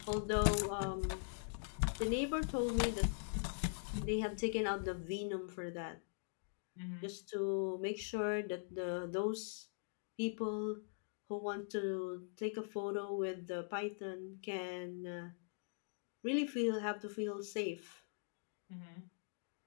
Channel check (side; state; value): right; silent; digital silence